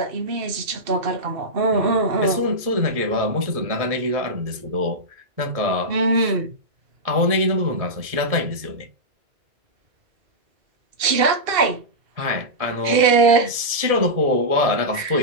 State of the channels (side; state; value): left; late; 1.7 ms